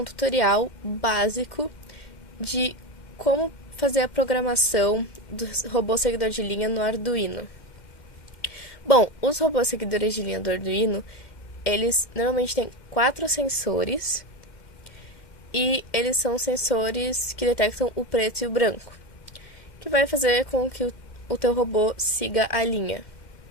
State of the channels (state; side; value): late; right; 2.1 ms